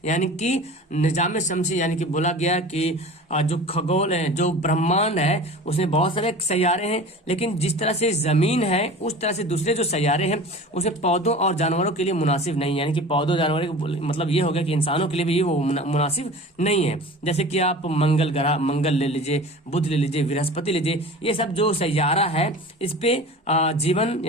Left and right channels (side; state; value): both; normal; correlation 0.38